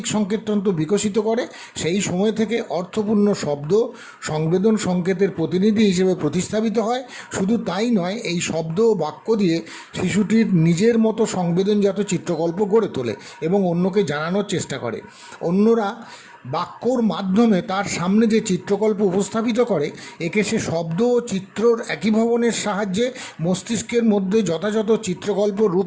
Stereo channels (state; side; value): identical; both; correlation 1.00